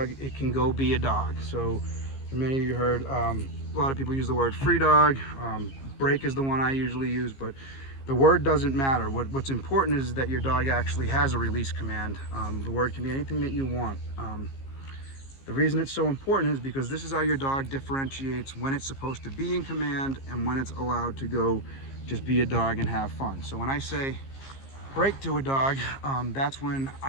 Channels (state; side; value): late; right; 15 ms